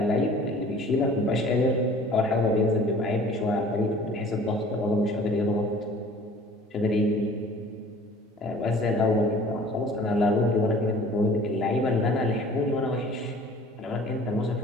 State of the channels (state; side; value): normal; both; correlation 0.49